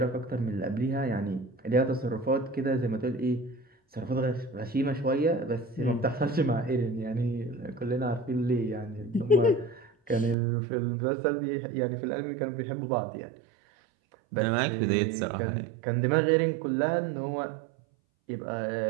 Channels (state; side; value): drops out; left; at 10.4 s